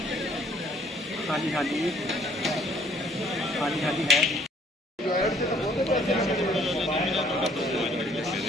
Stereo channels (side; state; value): both; normal; correlation 0.61